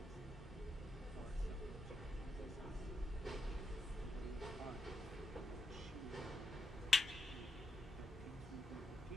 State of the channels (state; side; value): normal; both; correlation 0.83